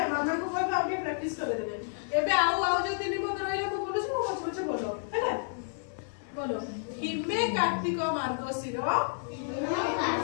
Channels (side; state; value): right; silent; 57 dB below the other